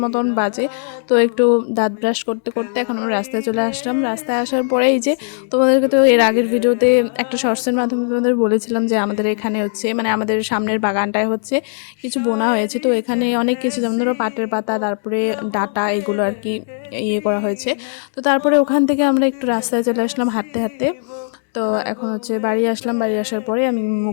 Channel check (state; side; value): silent; right; 67 dB below the other